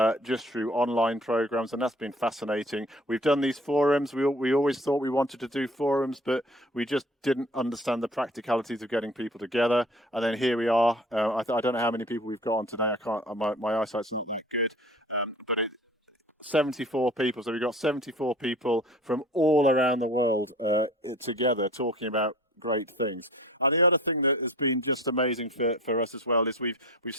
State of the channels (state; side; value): normal; both; correlation 0.46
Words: just through online programs, and that's been fascinating. We've done these forums. We always thought we wanted to do forums, but we just didn't understand the practicalities of getting people together. And then here we are. I don't know how many people we've got on today. I can't. My eyesight's not that good, but 74 people. So we've got 74 people from all around the world together talking about great things. And the other thing that has been just amazing for us as well is we've